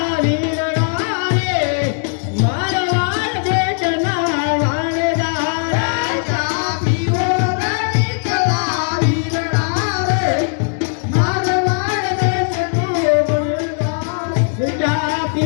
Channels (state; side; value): silent; right; 58 dB below the other